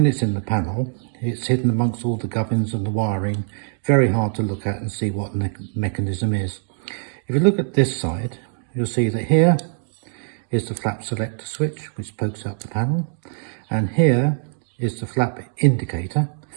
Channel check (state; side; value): silent; left; 64 dB below the other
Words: it's in the panel, it's hidden amongst all the gubbins and the wiring, very hard to look at and see what the mechanism is. If you look at this side, you'll see that here is the flap selector switch, which pokes out the panel, and here is the flap indicator,